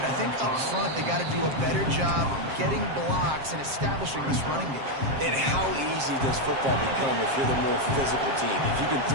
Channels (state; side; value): late; left; 7.5 ms